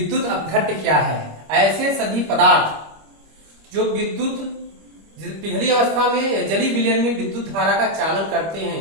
अपघट्य क्या है। ऐसे सभी पदार्थ जो विद्युत पिघली अवस्था में या जलीय विलयन में विद्युत धारा का चालन करते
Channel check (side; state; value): left; late; 25 ms